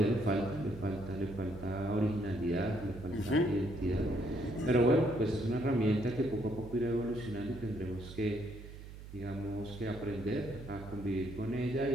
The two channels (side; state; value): right; noise; hum, 14 dB below the sound